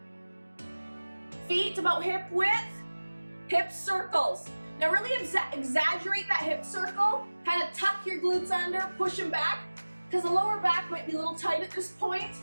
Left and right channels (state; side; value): inverted; both; correlation -1.00